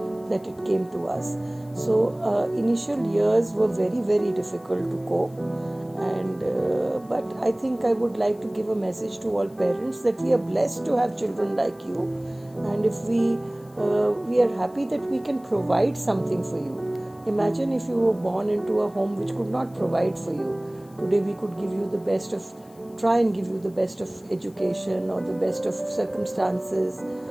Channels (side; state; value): left; noise; hiss, 28 dB below the sound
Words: that it came to us. So initial years were very, very difficult to cope. And but I think I would like to give a message to all parents that we are blessed to have children like you, and if we are happy that we can provide something for you. Imagine if you were born into a home which could not provide for you. Today we could try and give you the best of education, or the best of circumstances,